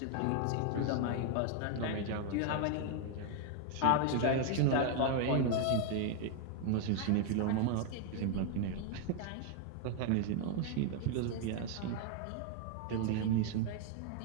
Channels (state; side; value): different; both; correlation 0.00